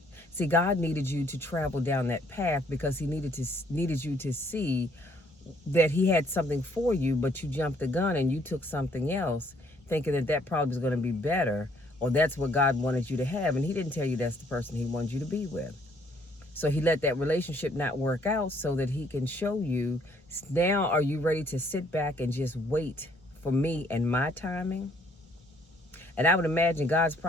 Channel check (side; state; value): both; normal; correlation 0.65